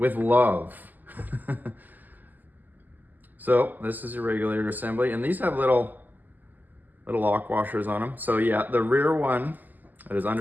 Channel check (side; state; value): left; late; 0.085 ms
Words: love. So this is your regulator assembly, and these have little lock washers on them. So yeah, the rear one that is